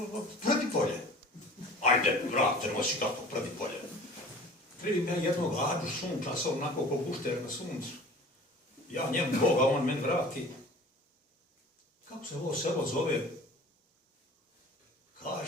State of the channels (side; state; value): both; normal; correlation 0.43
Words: Predipolje. Ajde, vrate, nosi kako Predipolje. Primim ja jednog Ađu sunčasa, onako ko gušter na suncu. Ja njemu Boga, on meni vrati. Kako se ovo selo zove?